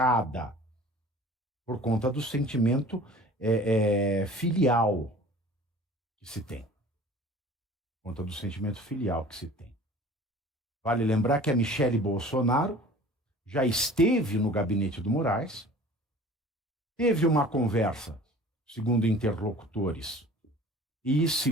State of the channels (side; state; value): both; normal; correlation 0.45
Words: por conta do sentimento filial que se tem. Por conta do sentimento filial que se tem. Vale lembrar que a Michele Bolsonaro já esteve no gabinete do Moraes, teve uma conversa, segundo interlocutores, e